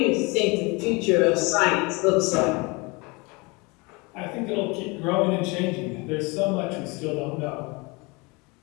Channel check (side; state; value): right; quieter; 27.1 dB